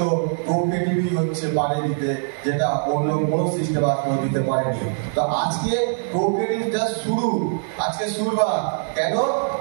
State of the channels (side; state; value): left; silent; digital silence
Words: কোঅপারেটিভই হচ্ছে পারে দিতে, যেটা অন্য কোনো সিস্টেম আজকেও দিতে পারেনি। তো আজকে কোঅপারেটিভ জাস্ট শুরু, আজকে শুরুবার। কেন?